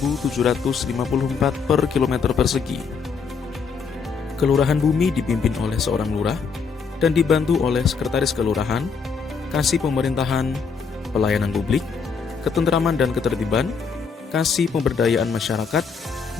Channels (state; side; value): quieter; right; 5.6 dB